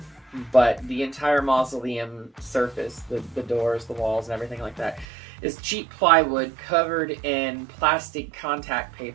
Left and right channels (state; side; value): drops out; left; at 5.1 s